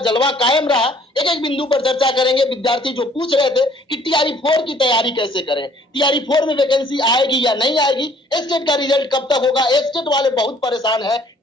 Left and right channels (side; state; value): both; normal; correlation 0.58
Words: जलवा कायम रहा? एक एक बिंदु पर चर्चा करेंगे। विद्यार्थी जो पूछ रहे थे कि टीआरई 4 की तैयारी कैसे करें, टीआरई 4 में वैकेंसी आएगी या नहीं आएगी, स्टेट का रिजल्ट कब तक होगा, स्टेट वाले बहुत परेशान है